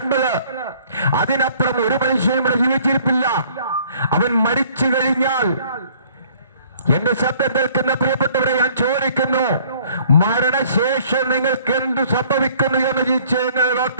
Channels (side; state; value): both; inverted; correlation -0.57